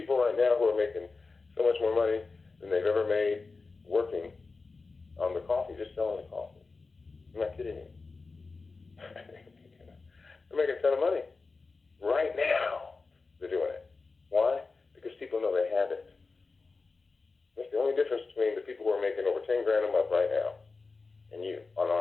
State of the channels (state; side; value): quieter; right; 4.1 dB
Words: right now who are making so much more money than they've ever made working on the coffee, just selling the coffee. I'm not kidding you. They're making a ton of money. Right now, they're doing it. Why? Because people know they have it. That's the only difference between the people who are making over 10 grand a month right now and you